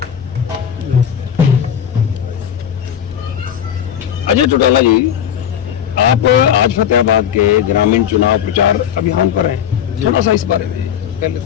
अजय चौटाला जी, आप आज फतेहाबाद के ग्रामीण चुनाव प्रचार अभियान पर हैं, थोड़ा सा इस बारे में पहले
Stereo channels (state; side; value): quieter; right; 9.2 dB